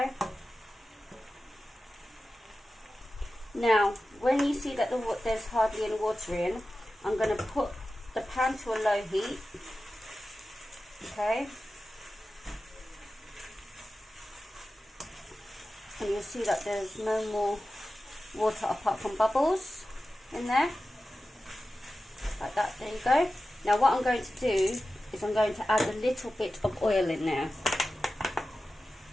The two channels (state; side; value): normal; both; correlation 0.94